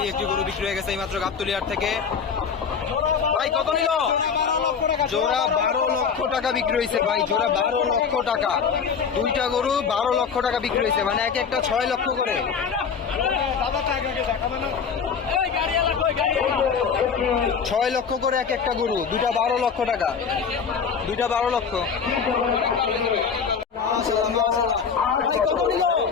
একটি গরু বিক্রি হয়ে গেছে মাত্র গাবতলী থেকে। ভাই কত নিল? জোড়া 12 লক্ষ টাকা বিক্রি হয়েছে। ভাই জোড়া 12 লক্ষ টাকা। দুইটা গরু 12 লক্ষ টাকা বিক্রি হয়েছে, মানে এক একটা 6 লক্ষ করে। 6 লক্ষ করে এক একটা গরু, দুটা 12 লক্ষ টাকা, দুইটা 12 লক্ষ।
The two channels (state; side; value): quieter; right; 6.3 dB